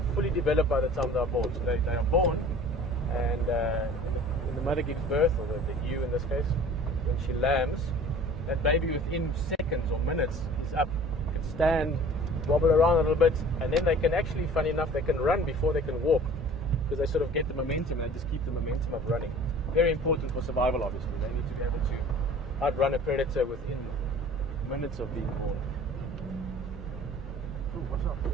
fully developed by the time they are born. So they are born, and when the mother gives birth, or the ewe in this case, when she lambs, that baby within seconds or minutes is up, can stand, wobble around a little bit, and then they can actually, funny enough, they can run before they can walk, because they sort of get the momentum, they just keep the momentum of running. Very important for survival, obviously. They need to be able to outrun a predator within minutes of being born. Ooh, what's up?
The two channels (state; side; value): normal; both; correlation 0.45